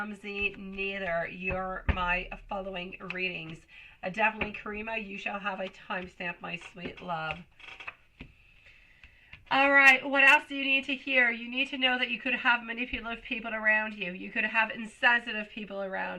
neither. You're my following readings. Definitely, Karima, you shall have a timestamp, my sweet love. All right, what else do you need to hear? You need to know that you could have manipulative people around you. You could have insensitive people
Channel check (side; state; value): both; identical; correlation 1.00